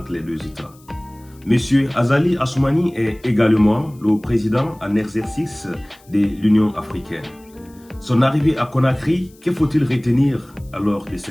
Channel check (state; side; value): noise; left; hiss, 29 dB below the sound